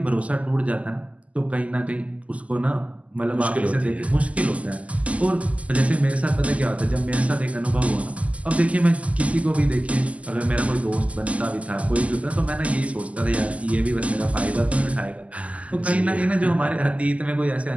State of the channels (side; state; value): left; late; 0.068 ms